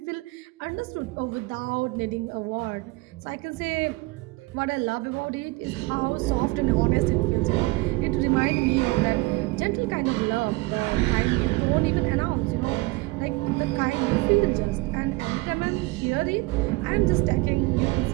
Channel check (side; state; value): left; quieter; 22.9 dB